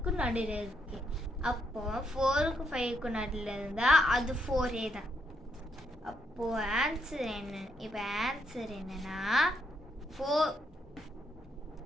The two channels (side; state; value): both; normal; correlation 0.77